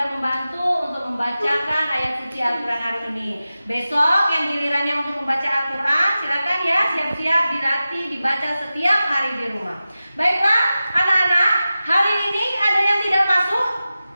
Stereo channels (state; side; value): inverted; both; correlation -0.94